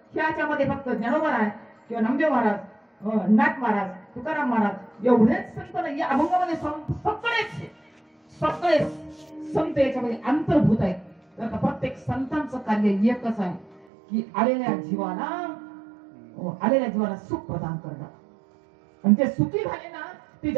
ह्याच्यामध्ये फक्त ज्ञानोबा आहे किंवा नामदेव महाराज, नाथ महाराज, तुकाराम महाराज एवढेच संत नाही, या अभंगामध्ये सगळे संत याच्यामध्ये अंतर्भूत आहेत. तर प्रत्येक संतांचं कार्य एकच आहे की आलेल्या जीवाला सुख प्रदान करणं. आणि ते सुखी झाले ना ते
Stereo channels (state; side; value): drops out; left; at 13.9 s